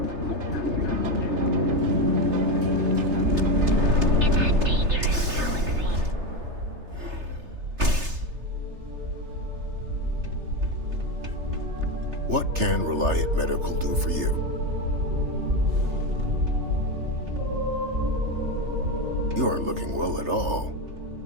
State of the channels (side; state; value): left; late; 3.3 ms